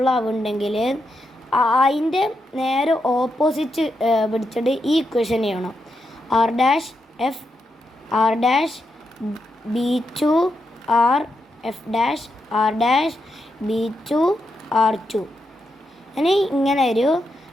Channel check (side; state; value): both; normal; correlation 0.84